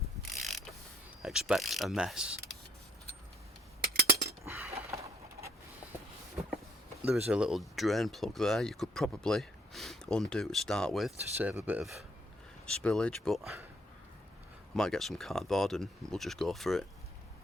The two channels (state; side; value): normal; both; correlation 0.67